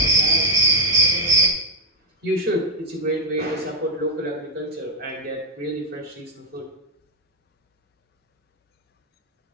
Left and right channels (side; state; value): both; normal; correlation 0.03